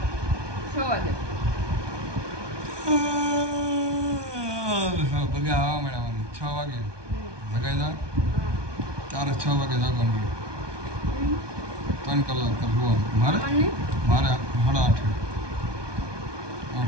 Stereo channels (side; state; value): left; late; 1.2 ms